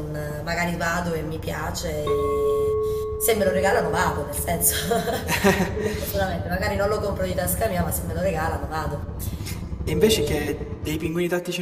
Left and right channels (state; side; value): identical; both; correlation 1.00